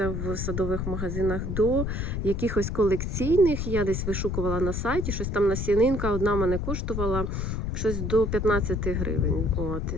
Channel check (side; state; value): left; noise; rumble, 2 dB below the sound